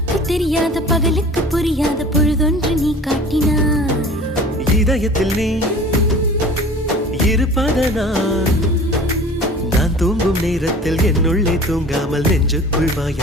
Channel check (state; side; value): normal; both; correlation 0.43